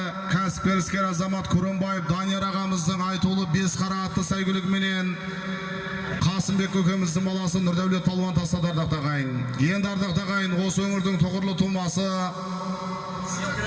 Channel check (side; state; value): both; identical; correlation 1.00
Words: кәсіпкер іскер азамат Күрімбаев Данияр ағамыздың айтулы бес қара атты сайгүлігіменен Қасымбек көкеміздің баласы Нұрдәулет палуан тастады ардақ тағайын. Енді ардақ тағайын осы өңірдің тұғырлы тумасы